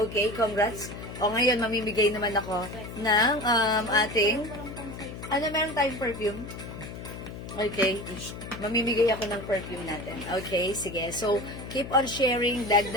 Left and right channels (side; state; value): left; noise; hum, 10 dB below the sound